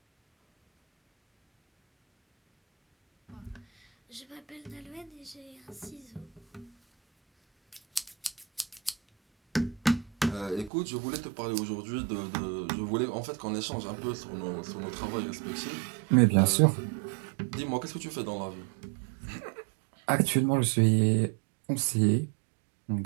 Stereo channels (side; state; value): left; drops out; at 10.7 s